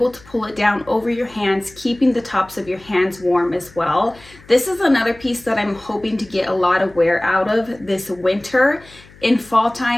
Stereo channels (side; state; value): left; noise; hum, 24 dB below the sound